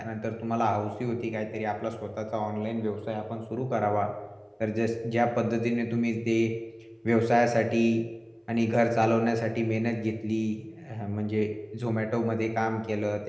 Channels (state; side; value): identical; both; correlation 1.00